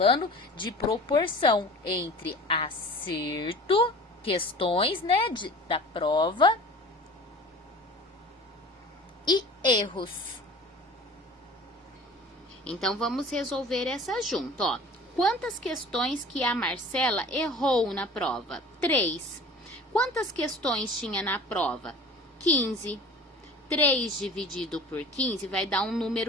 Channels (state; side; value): normal; both; correlation 0.42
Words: de proporção entre acerto, questões, né, da prova, e erros. Então, vamos resolver essa junto, ó. Quantas questões que a Marcela errou na prova? 3. Quantas questões tinha na prova? 15. 3 dividido por 15 vai dar um